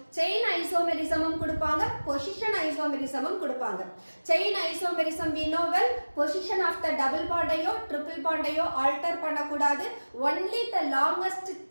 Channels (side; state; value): both; inverted; correlation -1.00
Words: chain isomerismம் கொடுப்பாங்க, position isomerismம் கொடுப்பாங்க. chain isomerism we know well, position of the double bond ஐயோ triple bond ஐயோ alter பண்ணக்கூடாது. only the longest